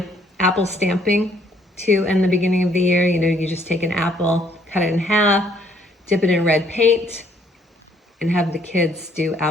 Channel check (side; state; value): both; normal; correlation 0.65